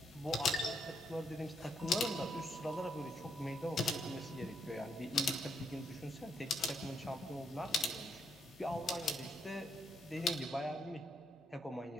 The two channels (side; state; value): both; normal; correlation 0.75